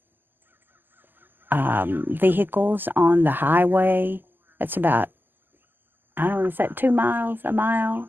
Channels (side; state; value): left; late; 0.092 ms